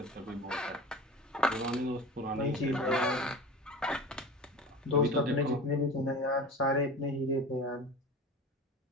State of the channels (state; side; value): normal; both; correlation 0.34